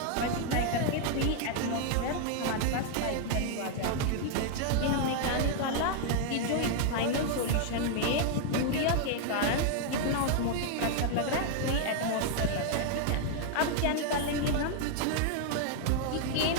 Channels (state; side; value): different; both; correlation 0.00